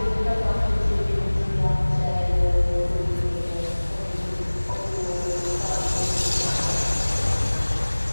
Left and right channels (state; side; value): inverted; both; correlation -1.00